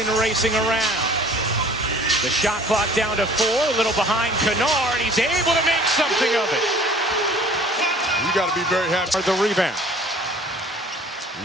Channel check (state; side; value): normal; both; correlation 0.51